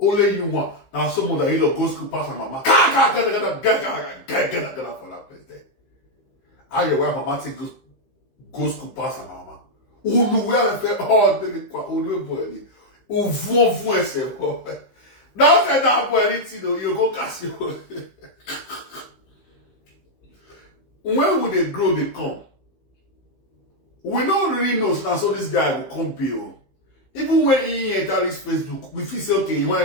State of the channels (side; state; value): right; late; 15 ms